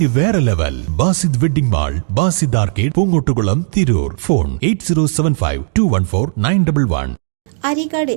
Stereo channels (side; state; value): left; silent; digital silence